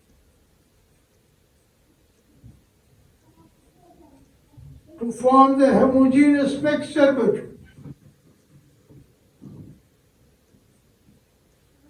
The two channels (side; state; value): both; identical; correlation 1.00